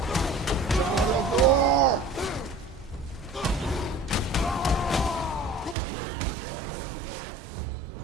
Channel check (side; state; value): left; drops out; at 5.8 s